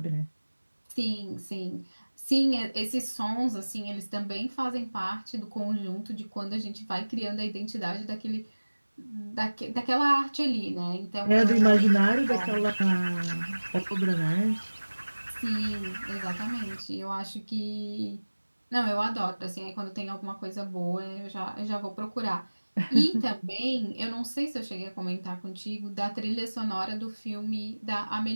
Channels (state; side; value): inverted; both; correlation -1.00